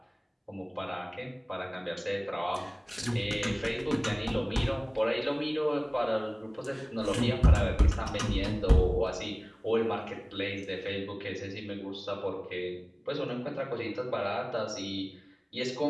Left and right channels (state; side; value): identical; both; correlation 1.00